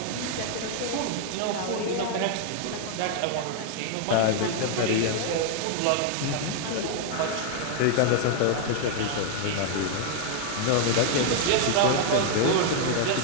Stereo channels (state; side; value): different; both; correlation 0.00